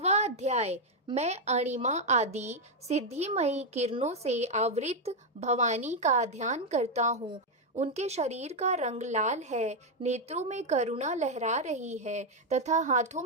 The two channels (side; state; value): both; normal; correlation 0.02